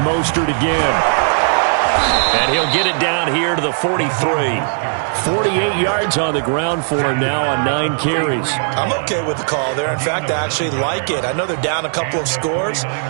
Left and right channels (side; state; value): left; silent; digital silence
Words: again. And he'll get it down here to the 43. 48 yards on the ground for him now on 9 carries. I'm okay with the call there. In fact, I actually like it. I know they're down a couple of scores,